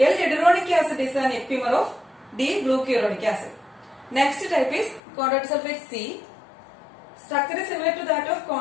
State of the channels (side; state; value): right; drops out; at 5.0 s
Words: acid is an epimer of D-glucuronic acid. Next type is chondroitin sulfate C. Structure is similar to that of